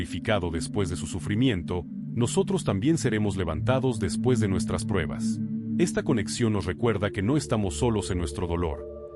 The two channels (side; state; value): both; identical; correlation 1.00